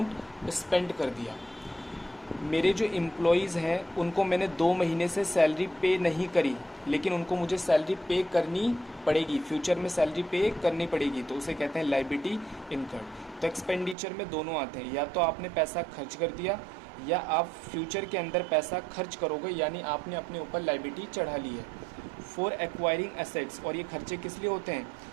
स्पेंड कर दिया। मेरे जो एम्प्लॉयज़ हैं उनको मैंने 2 महीने से सैलरी पे नहीं करी, लेकिन उनको मुझे सैलरी पे करनी पड़ेगी, फ्यूचर में सैलरी पे करनी पड़ेगी, तो उसे कहते हैं लायबिलिटी इनकर्ड। तो एक्सपेंडिचर में दोनों आते हैं, या तो आपने पैसा खर्च कर दिया या आप फ्यूचर के अंदर पैसा खर्च करोगे, यानी आपने अपने ऊपर लायबिलिटी चढ़ा ली है। फॉर एक्वायरिंग एसेट्स, और ये खर्चे किस लिए होते हैं?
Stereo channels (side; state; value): left; drops out; at 14.0 s